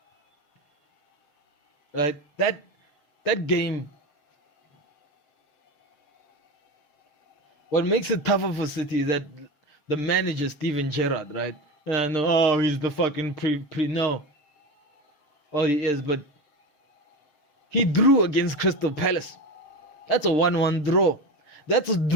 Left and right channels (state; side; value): late; right; 6.6 ms